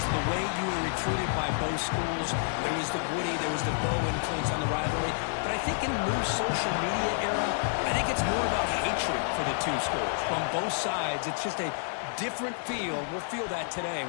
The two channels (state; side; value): silent; right; 58 dB below the other